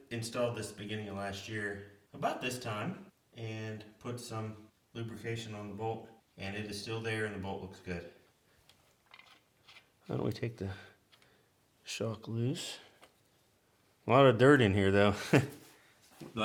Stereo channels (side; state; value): both; identical; correlation 1.00